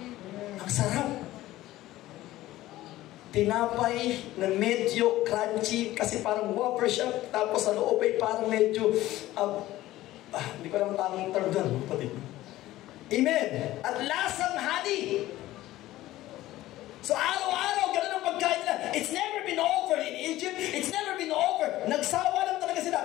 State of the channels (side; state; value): right; quieter; 15.9 dB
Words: Ang sarap. Tinapay na medyo crunchy kasi parang wafer siya, tapos sa loob ay parang medyo hindi ko alam tamang term doon, kapatid. Amen. At lasang honey. So araw-araw, ganun ang pagkain nila. It's never been over in Egypt. It's never been over. Nagsawa lang talaga sila.